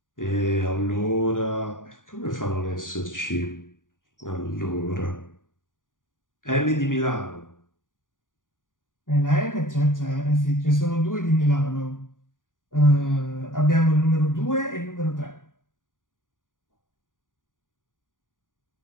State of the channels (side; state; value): right; late; 0.89 ms